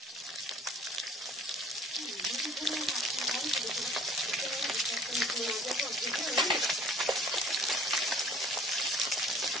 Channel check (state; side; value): normal; both; correlation 0.51